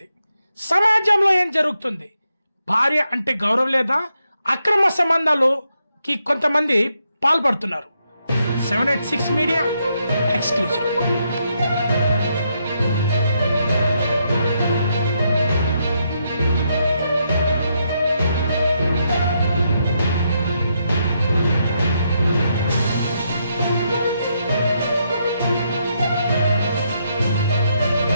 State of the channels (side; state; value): both; inverted; correlation -0.79